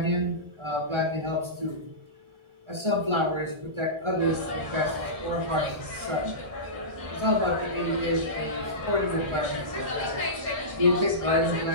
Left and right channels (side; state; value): left; late; 1.4 ms